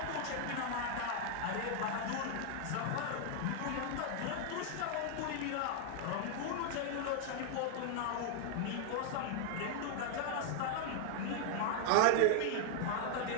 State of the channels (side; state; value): both; different; correlation 0.00